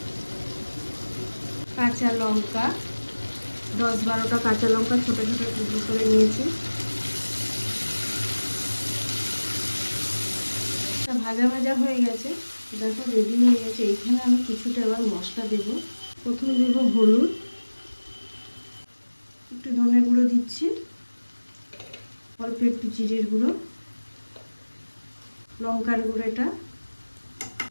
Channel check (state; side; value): inverted; both; correlation -1.00